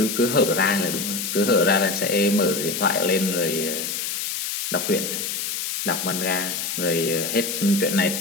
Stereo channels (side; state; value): left; noise; hiss, 3 dB below the sound